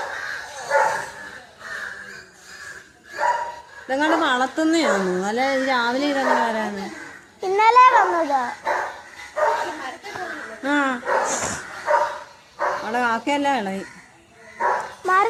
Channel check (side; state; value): both; identical; correlation 1.00